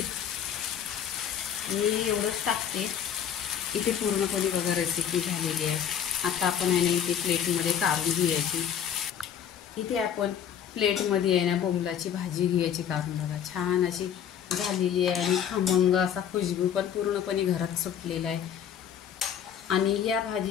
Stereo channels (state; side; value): quieter; right; 8.8 dB